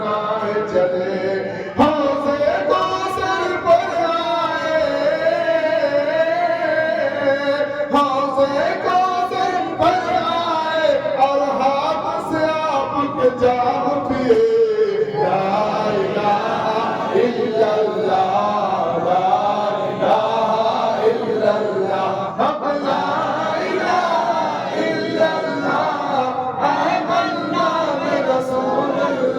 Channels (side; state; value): both; identical; correlation 1.00